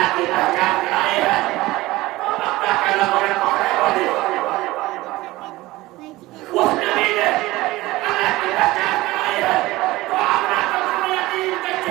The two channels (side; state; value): left; quieter; 18.9 dB